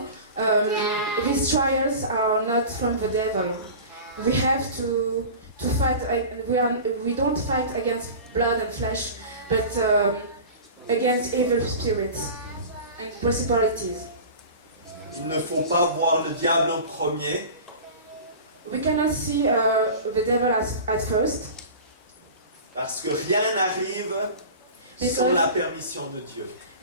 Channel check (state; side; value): inverted; both; correlation -0.35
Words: these trials are not from the devil. We have to fight. We don't fight against blood and flesh, but against evil spirits and principalities. Il ne faut pas voir le diable en premier, We cannot see the devil at first, parce que rien n'arrive sans la permission de Dieu.